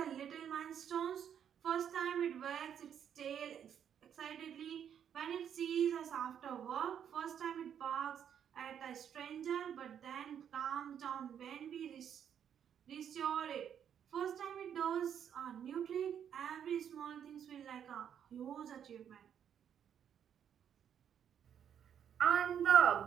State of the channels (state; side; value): quieter; left; 8.8 dB